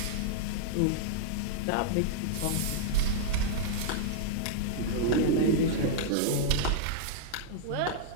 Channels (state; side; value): different; both; correlation -0.01